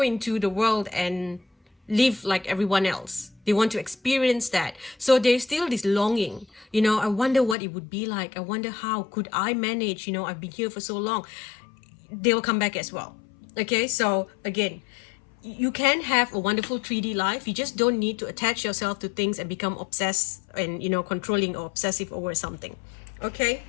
into the world and live like everyone else. They want to experience that. So there's still this longing, you know, I wonder what it would be like. I wonder how could I manage, you know, I've been here for so long. They will come back as well. Okay, so again, you can have a wonderful 3D life. You just don't need to attach yourself to things and become obsessed and, you know, controlling or obsessive over something. Okay,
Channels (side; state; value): right; drops out; at 7.6 s